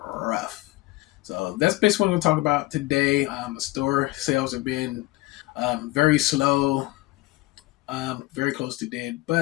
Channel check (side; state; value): right; quieter; 19.5 dB